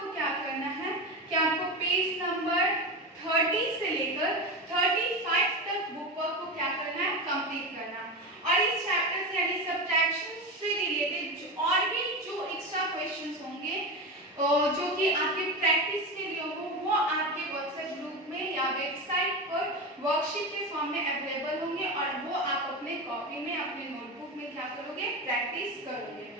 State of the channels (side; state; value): both; normal; correlation 0.20